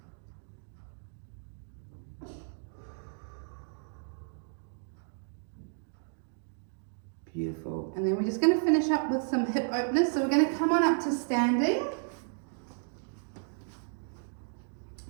Beautiful. And then we're just going to finish up with some hip openers. So we're going to come on up to standing.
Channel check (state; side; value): silent; left; digital silence